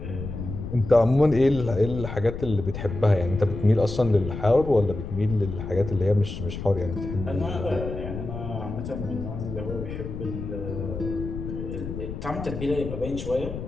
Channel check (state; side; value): noise; left; rumble, 7 dB below the sound